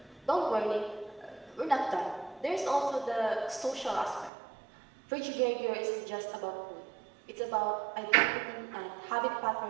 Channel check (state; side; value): drops out; left; at 4.3 s